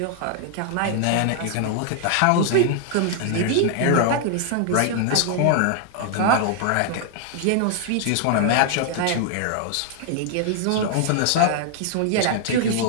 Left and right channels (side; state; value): both; different; correlation 0.00